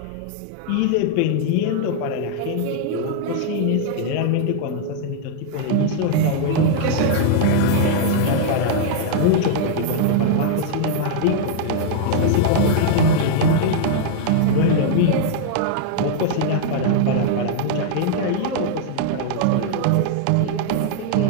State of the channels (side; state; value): both; different; correlation -0.01